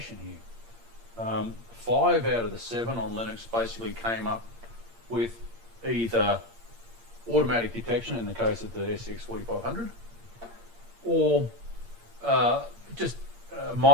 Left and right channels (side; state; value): left; late; 8.7 ms